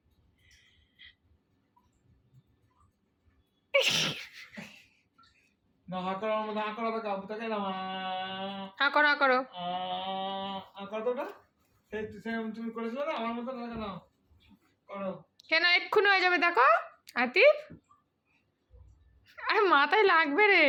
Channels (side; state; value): both; identical; correlation 1.00